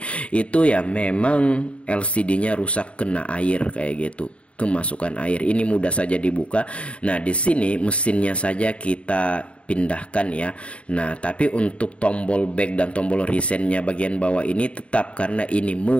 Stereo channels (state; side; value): late; right; 0.061 ms